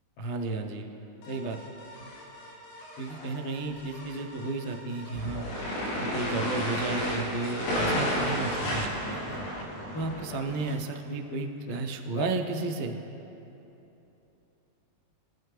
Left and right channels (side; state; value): right; late; 20 ms